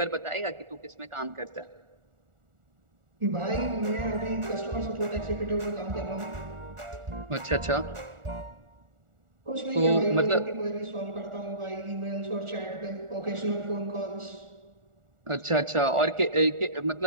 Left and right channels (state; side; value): late; left; 1.4 ms